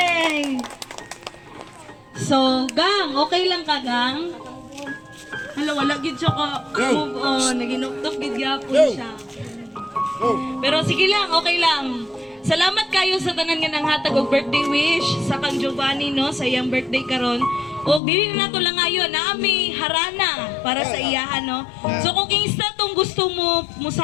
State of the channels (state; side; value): drops out; right; at 18.0 s